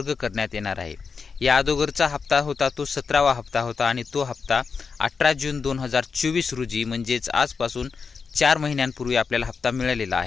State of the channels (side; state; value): right; quieter; 5.3 dB